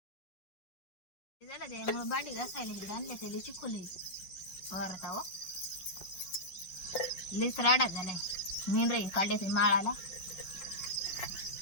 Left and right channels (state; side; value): late; right; 5.4 ms